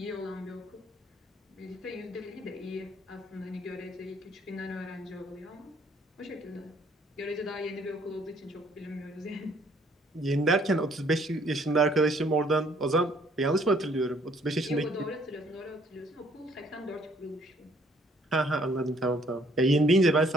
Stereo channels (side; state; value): both; normal; correlation 0.63